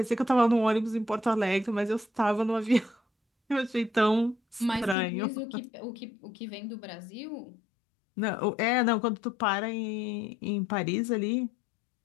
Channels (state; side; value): drops out; right; at 5.0 s